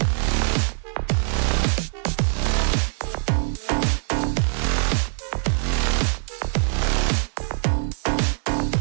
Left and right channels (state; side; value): silent; left; digital silence